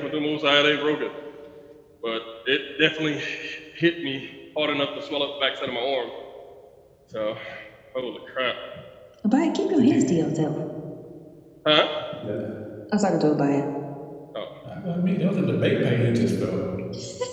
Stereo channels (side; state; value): both; identical; correlation 1.00